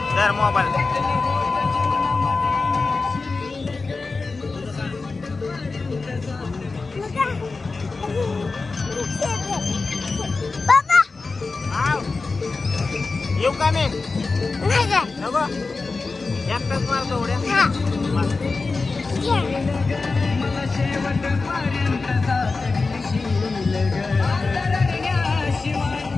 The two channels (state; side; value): quieter; right; 4.0 dB